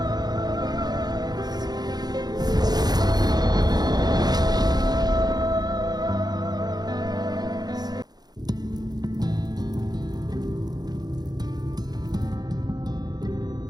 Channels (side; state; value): left; late; 0.19 ms